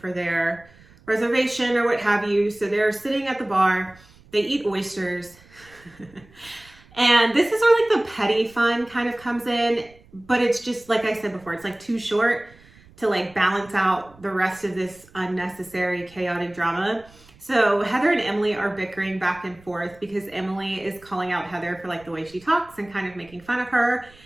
their reservation or what have you. So they're sitting at the bar. They eat oysters. And this is where like the petty fun kind of comes in. But it's just, like I said before, it's like too short to like balance out the rest of this unnecessary chaotic drama. So Heather and Emily are bickering back and forth because Emily is calling out Heather for like the way she talks and kind of making fun of her.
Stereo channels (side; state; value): right; noise; rumble, 26 dB below the sound